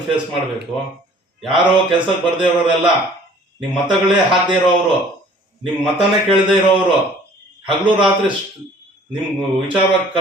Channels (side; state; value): both; normal; correlation 0.53